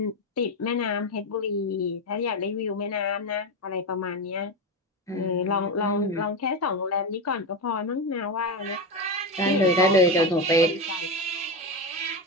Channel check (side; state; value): both; normal; correlation 0.14